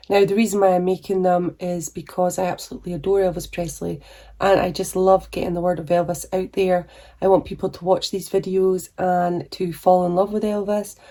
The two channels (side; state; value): both; identical; correlation 1.00